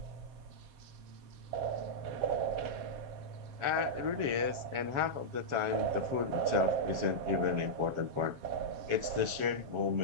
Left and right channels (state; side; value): late; left; 7.4 ms